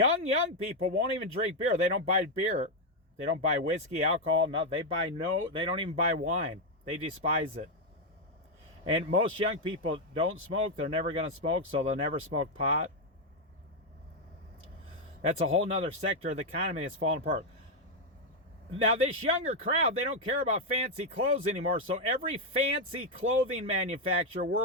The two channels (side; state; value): both; normal; correlation 0.02